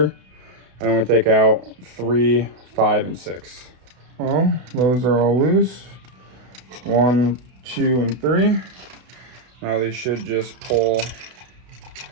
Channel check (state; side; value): late; left; 32 ms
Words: and then we take out 3, 5, and 6. Well, those are all loose. 1, 2, and 3. Now they should just pull